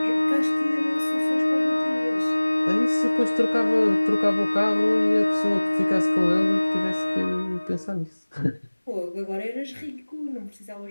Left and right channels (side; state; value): both; inverted; correlation -1.00